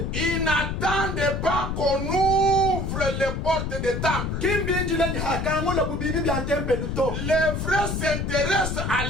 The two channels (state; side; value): noise; left; rumble, 2 dB below the sound